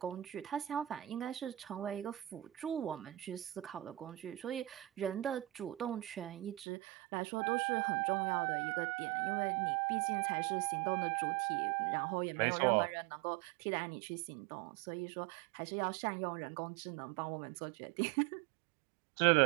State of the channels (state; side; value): drops out; left; at 6.7 s